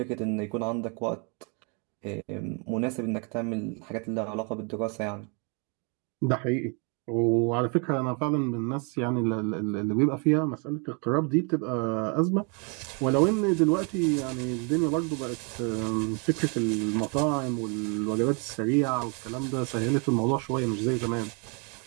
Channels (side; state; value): left; quieter; 35.2 dB